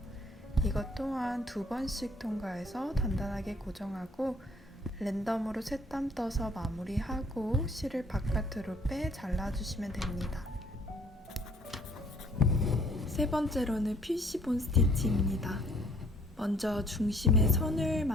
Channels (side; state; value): both; normal; correlation 0.61